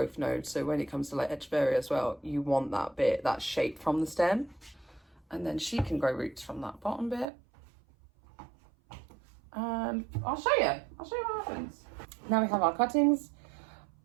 node. So when it comes to like Echeveria as well, you want that bit, that shape from the stem. And then she can grow roots from that bottom bit. And I'll show you what happens. Now we have our cuttings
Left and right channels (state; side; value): drops out; left; at 7.2 s